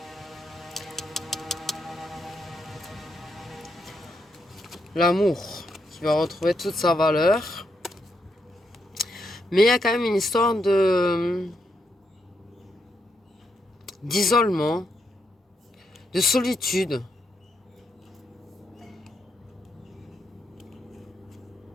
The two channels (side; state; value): both; normal; correlation 0.80